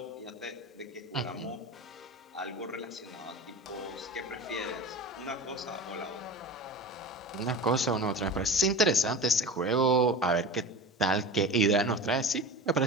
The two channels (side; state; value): both; normal; correlation 0.32